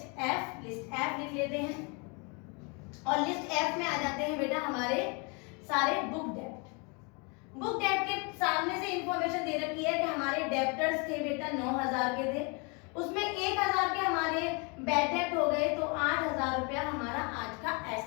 एफ। लिस्ट एफ लिख लेते हैं, और लिस्ट एफ में आ जाते हैं बेटा हमारे सारे बुक डेप्ट। बुक डेप्ट के सामने से इंफॉर्मेशन दे रखी है कि हमारे डेप्टर्स थे बेटा 9,000 के थे, उसमें 1,000 के हमारे बैड डेप्ट हो गए, तो 8,000 रुपया हमारा आज का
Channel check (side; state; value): right; quieter; 32.4 dB